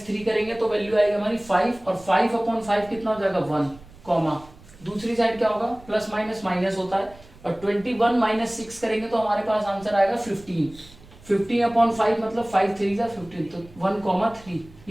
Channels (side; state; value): right; noise; rumble, 22 dB below the sound